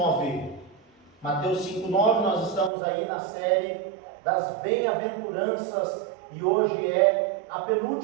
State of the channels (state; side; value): drops out; left; at 2.7 s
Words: Mateus 5, 9, nós estamos aí na série das bem-aventuranças e hoje é a